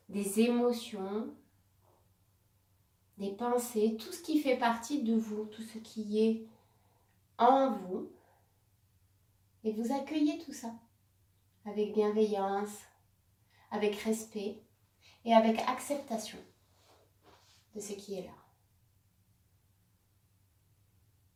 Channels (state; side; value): identical; both; correlation 1.00